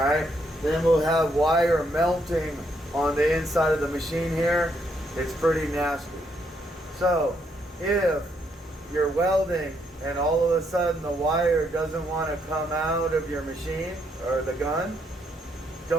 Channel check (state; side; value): normal; both; correlation 0.74